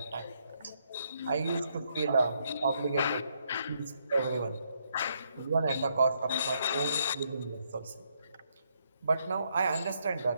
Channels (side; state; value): both; inverted; correlation -0.75